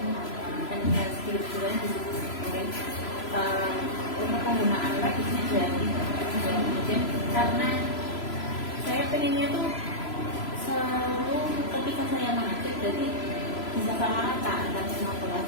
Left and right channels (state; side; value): late; right; 3.0 ms